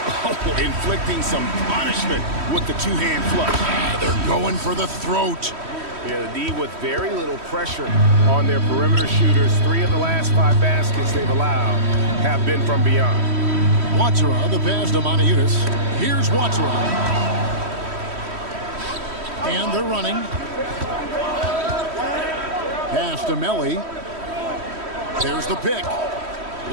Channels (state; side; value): late; left; 3.1 ms